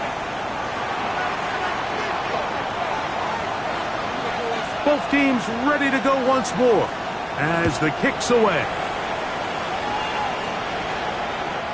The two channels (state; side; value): identical; both; correlation 1.00